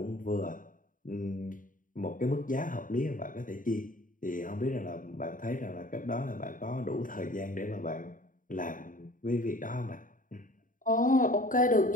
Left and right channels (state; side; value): late; right; 0.39 ms